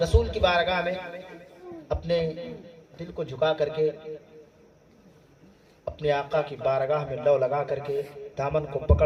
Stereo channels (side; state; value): both; identical; correlation 1.00